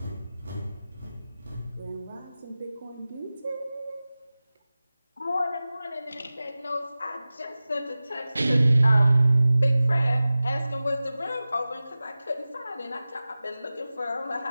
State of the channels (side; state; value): both; inverted; correlation -0.96